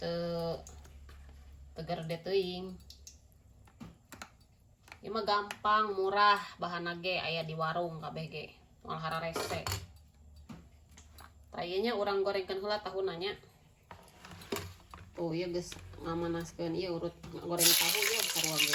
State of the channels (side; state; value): both; identical; correlation 1.00